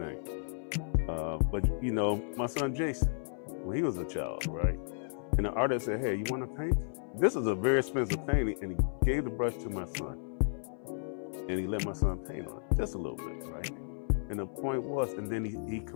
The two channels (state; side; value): silent; right; 56 dB below the other